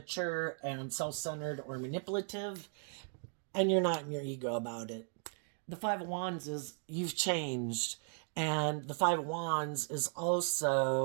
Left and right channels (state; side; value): silent; left; 53 dB below the other